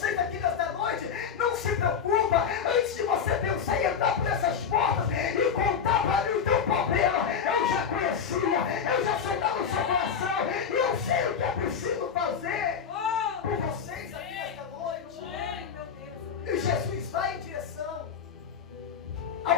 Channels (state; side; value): quieter; right; 7.0 dB